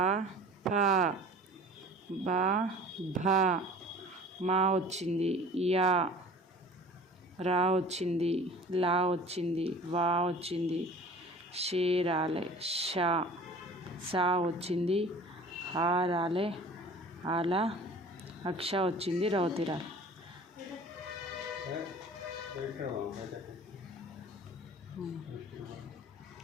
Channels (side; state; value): both; normal; correlation 0.44